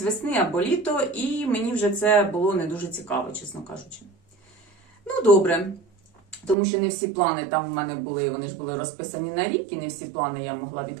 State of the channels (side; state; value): left; drops out; at 6.6 s